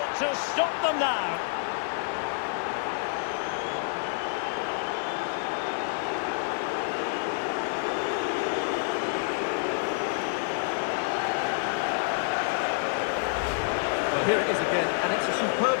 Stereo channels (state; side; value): silent; right; digital silence